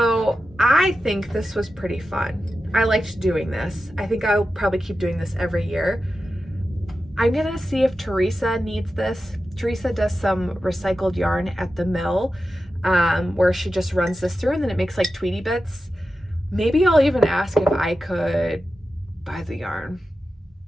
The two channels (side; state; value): both; normal; correlation 0.91